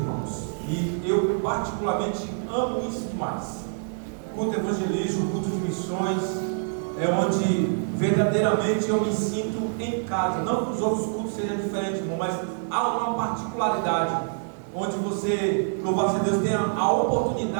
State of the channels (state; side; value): silent; left; 61 dB below the other